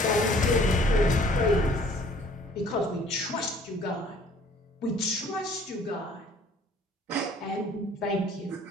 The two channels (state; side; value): normal; both; correlation 0.56